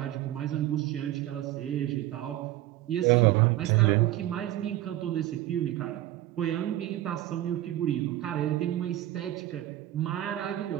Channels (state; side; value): quieter; left; 14.4 dB